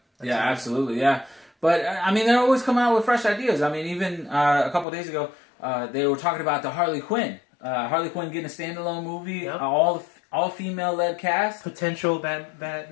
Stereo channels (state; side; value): drops out; right; at 4.9 s